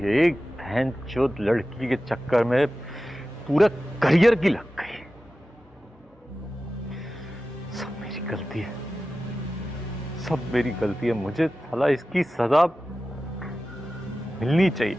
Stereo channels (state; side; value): normal; both; correlation 0.94